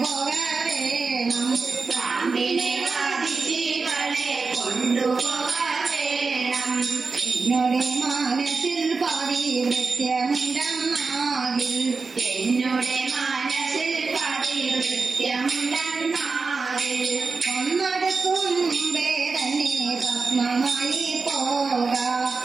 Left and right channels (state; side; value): quieter; left; 4.4 dB